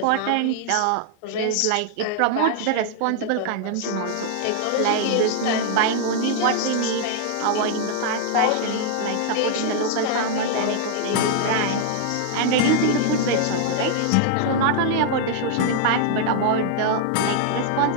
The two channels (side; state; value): both; different; correlation 0.00